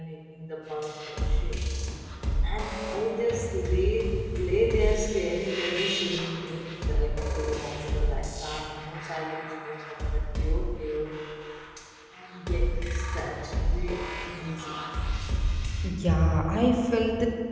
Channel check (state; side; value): identical; both; correlation 1.00